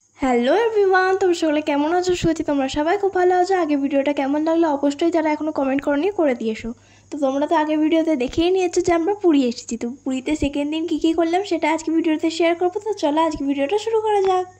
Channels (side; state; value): both; identical; correlation 1.00